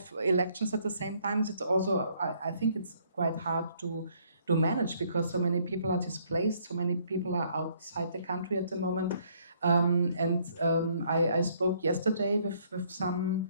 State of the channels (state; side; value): inverted; both; correlation -0.66